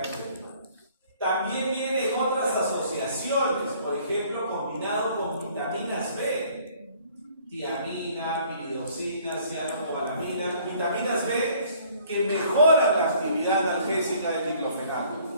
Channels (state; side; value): inverted; both; correlation -0.57